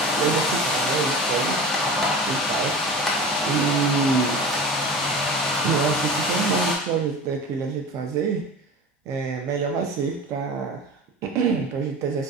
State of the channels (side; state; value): both; normal; correlation 0.33